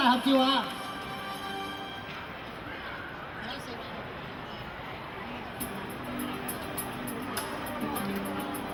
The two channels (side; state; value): both; identical; correlation 1.00